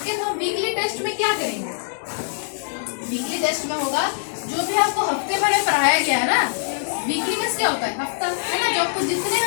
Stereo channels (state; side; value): silent; right; digital silence